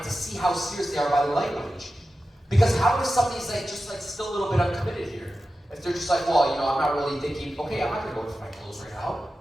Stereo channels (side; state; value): both; normal; correlation 0.93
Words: to see how serious they are by the language. Because how if somebody's like, just like still a little bit uncommitted here? If they're just like, well, you know, I'm not really thinking, okay, I'm not gonna go for my clothes right now.